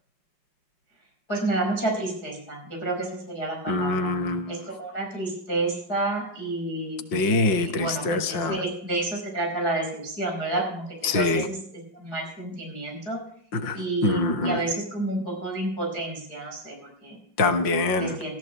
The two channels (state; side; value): late; right; 5.6 ms